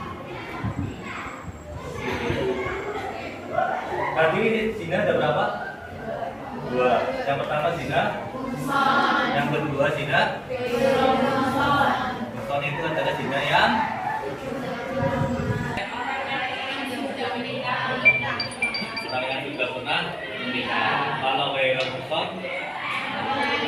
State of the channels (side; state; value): both; identical; correlation 1.00